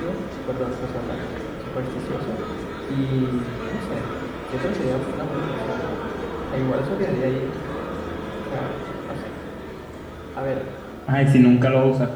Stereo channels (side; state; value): both; identical; correlation 1.00